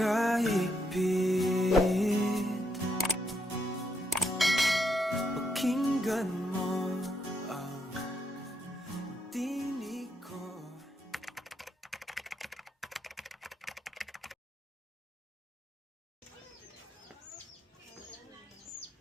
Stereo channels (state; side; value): normal; both; correlation 0.78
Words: Pakinggan mo ang tinig ko.